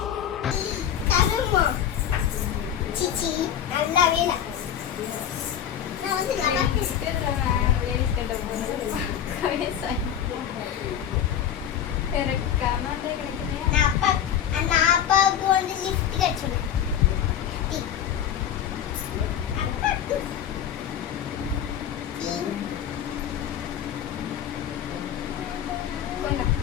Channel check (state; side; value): quieter; right; 9.6 dB